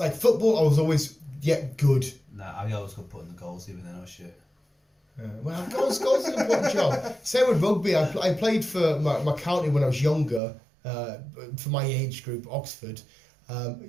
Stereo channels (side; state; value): left; drops out; at 10.4 s